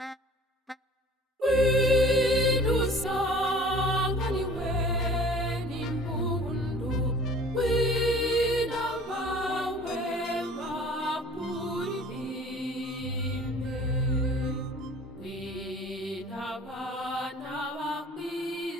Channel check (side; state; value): both; normal; correlation 0.47